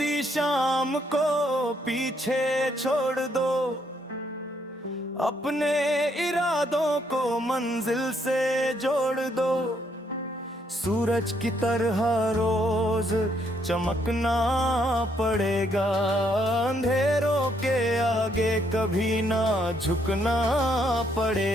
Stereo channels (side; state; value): both; normal; correlation 0.72